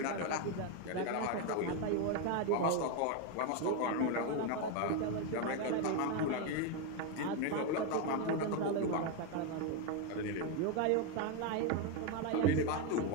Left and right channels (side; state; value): both; different; correlation 0.02